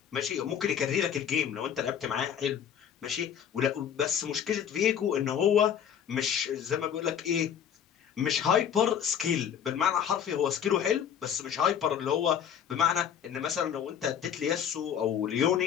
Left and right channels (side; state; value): right; quieter; 8.6 dB